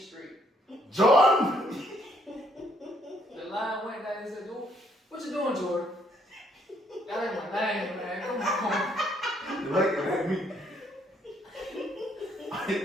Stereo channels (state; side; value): normal; both; correlation 0.69